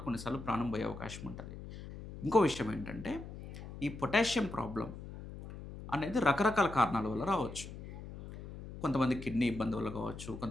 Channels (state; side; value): noise; left; hum, 12 dB below the sound